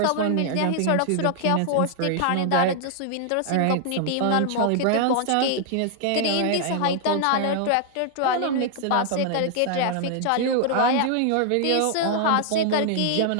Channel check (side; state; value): both; different; correlation -0.01